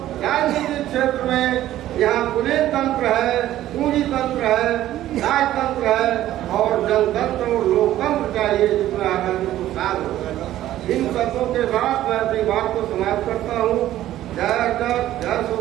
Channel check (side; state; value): left; quieter; 13.5 dB